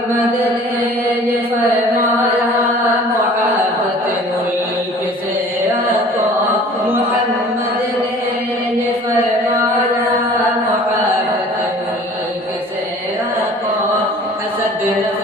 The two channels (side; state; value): both; normal; correlation 0.48